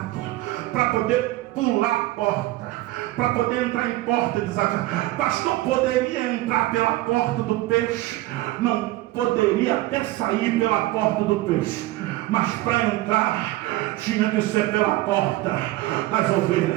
para poder pular a porta, para poder entrar em porta desafiada. Pastor, poderia entrar pela porta do peixe? Não, poderia até sair pela porta do peixe, mas para entrar tinha que ser pela porta das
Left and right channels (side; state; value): left; quieter; 17.6 dB